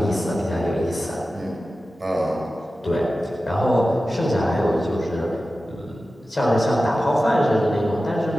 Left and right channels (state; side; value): normal; both; correlation 0.94